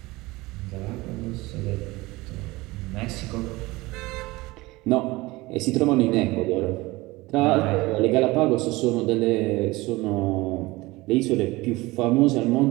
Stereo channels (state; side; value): quieter; left; 21.1 dB